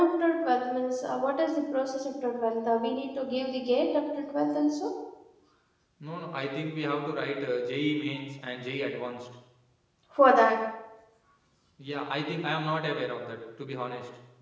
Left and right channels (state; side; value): identical; both; correlation 1.00